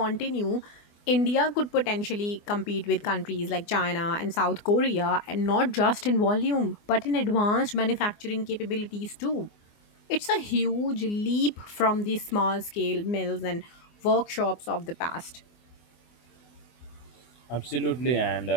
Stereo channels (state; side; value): late; right; 24 ms